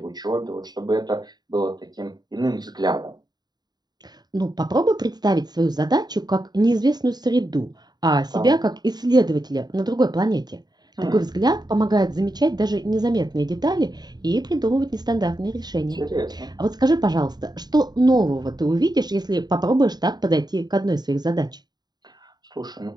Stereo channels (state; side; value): late; left; 0.20 ms